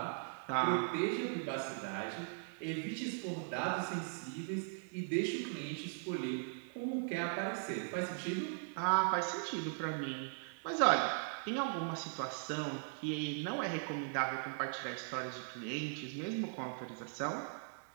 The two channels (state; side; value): silent; left; digital silence